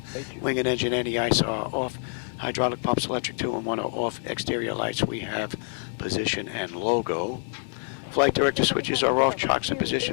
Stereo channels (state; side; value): silent; right; 61 dB below the other